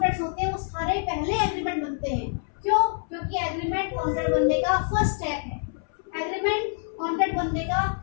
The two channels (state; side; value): silent; right; 61 dB below the other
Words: होते हैं वो सारे पहले एग्रीमेंट बनते हैं। क्यों? क्योंकि एग्रीमेंट कॉन्ट्रैक्ट बनने का फर्स्ट स्टेप है। एग्रीमेंट कॉन्ट्रैक्ट बनने का